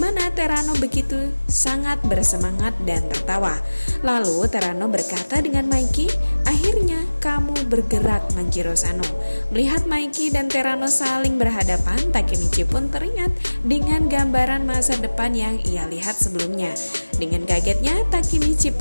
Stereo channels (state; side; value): inverted; both; correlation -1.00